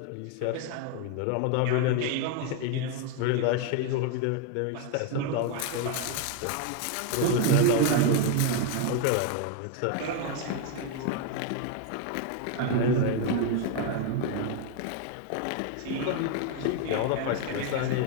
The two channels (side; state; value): both; different; correlation 0.01